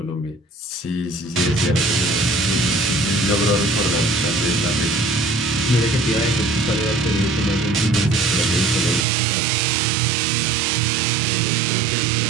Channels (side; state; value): left; drops out; at 9.1 s